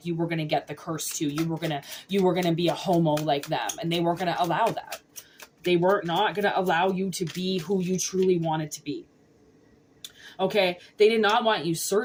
you were going to get the curse too. You were going to be a homo like them, and they weren't going to allow that. They were not going to allow you to be who you truly wanted to be. Okay, they did not want you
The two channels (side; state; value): both; identical; correlation 1.00